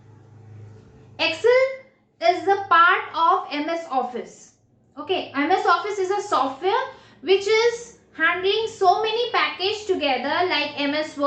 Excel is the part of MS Office. Okay, MS Office is a software which is handling so many packages together like MS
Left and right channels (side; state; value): both; identical; correlation 1.00